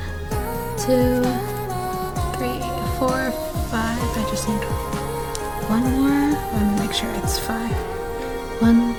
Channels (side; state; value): both; identical; correlation 1.00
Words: 2, 3, 4, 5. I just need one more. Let me make sure it's 5. 1,